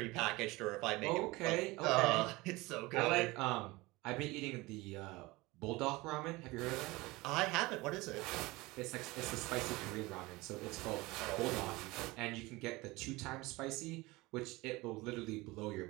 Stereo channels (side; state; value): left; quieter; 21.9 dB